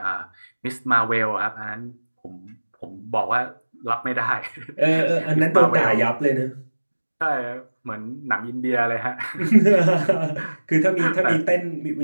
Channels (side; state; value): both; inverted; correlation -1.00